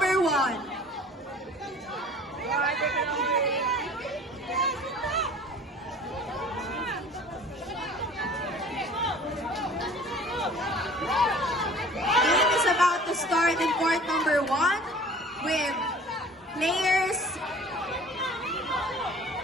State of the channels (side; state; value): both; normal; correlation 0.47